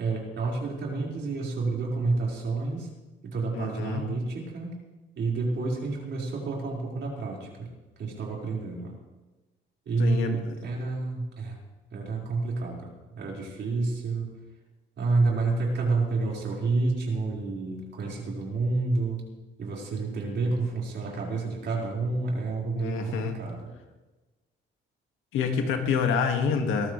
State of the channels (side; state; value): both; normal; correlation 0.72